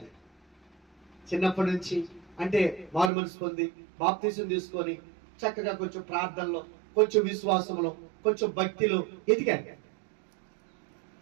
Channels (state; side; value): drops out; left; at 3.1 s